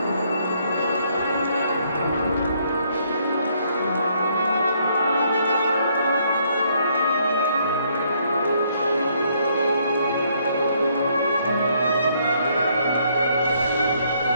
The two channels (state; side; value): inverted; both; correlation -0.69